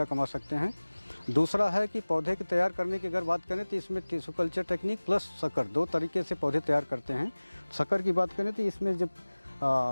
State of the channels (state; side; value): inverted; both; correlation -1.00